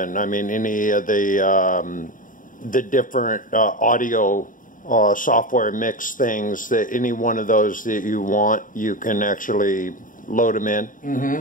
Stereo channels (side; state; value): right; late; 0.39 ms